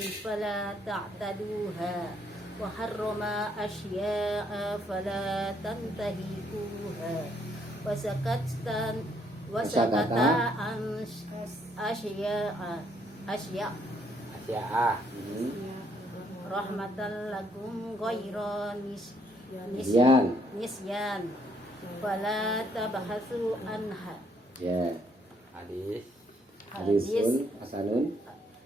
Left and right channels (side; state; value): both; normal; correlation 0.70